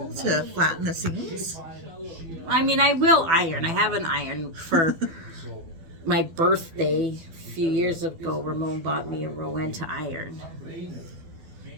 to flatten the seams? I mean, I will iron. I have an iron for my birthday a few years ago. Ramon bought me a Rowan to iron.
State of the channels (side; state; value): left; late; 12 ms